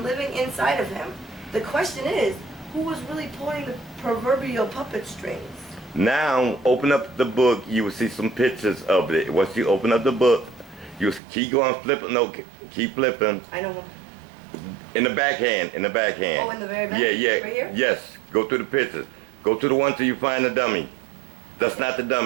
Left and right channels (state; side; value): drops out; left; at 11.2 s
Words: living inside of him. The question is, who was really pulling the proverbial puppet strings? Now, open up the book. You will see some pictures of it. Once you open up the book, you keep going flipping. No, keep flipping. I know. In the backhand. In the backhand. Oh, in the very back? Yeah, yeah. Right here? Yes. Go through the pictures. Go to the one till you find the dummy. That's not the